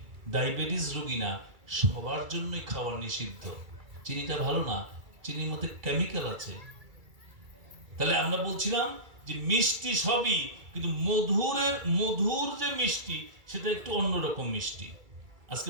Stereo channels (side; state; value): left; late; 2.3 ms